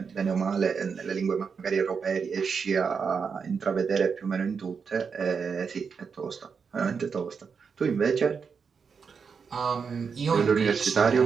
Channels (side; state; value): left; quieter; 5.9 dB